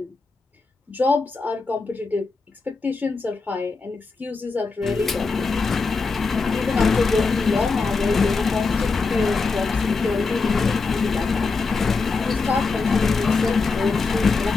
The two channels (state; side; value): quieter; right; 4.3 dB